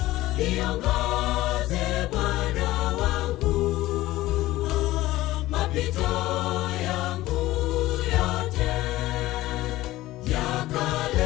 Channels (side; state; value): right; quieter; 16.9 dB